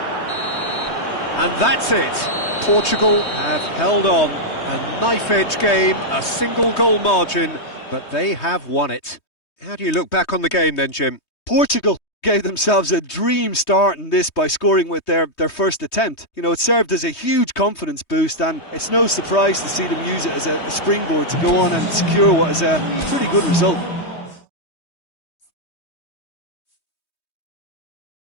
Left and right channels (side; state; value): right; late; 3.2 ms